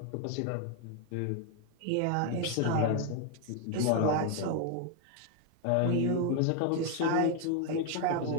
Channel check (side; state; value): both; different; correlation 0.01